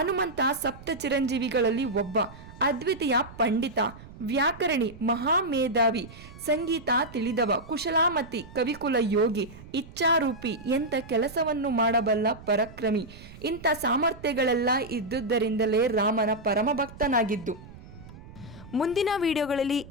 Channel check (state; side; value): noise; right; rumble, 18 dB below the sound